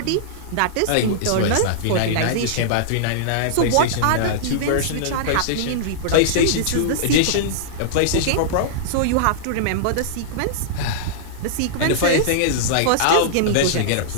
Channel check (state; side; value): different; both; correlation -0.02